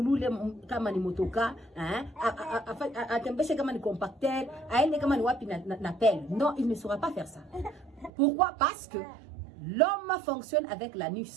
kama ni motoka, atembeshe kama ni compacteur, aende kama ni wapi na pelle. Non, il ne saura pas faire ça. Pourquoi? Parce que l'homme fonctionne avec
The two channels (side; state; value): left; drops out; at 8.1 s